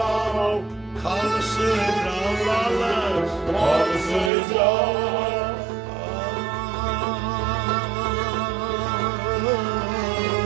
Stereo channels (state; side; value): drops out; left; at 4.3 s